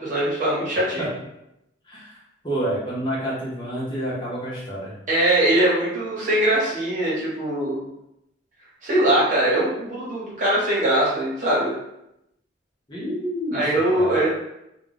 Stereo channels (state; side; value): normal; both; correlation 0.28